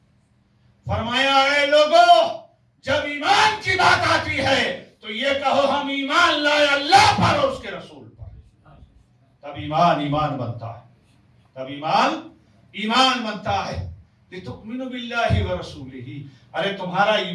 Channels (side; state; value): both; identical; correlation 1.00